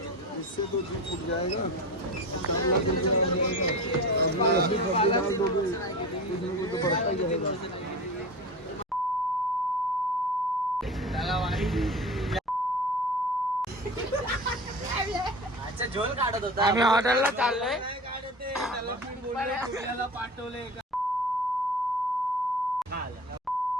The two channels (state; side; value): normal; both; correlation 0.33